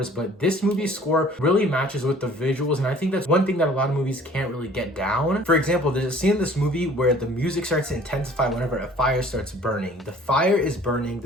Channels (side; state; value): both; normal; correlation 0.52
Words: but this movie's score really matches with the visuals, and I think that's one thing that a lot of movies can't really get down. For example, there's a scene in this movie where the music starts to intensify whenever a fire starts burning. The fire is burning,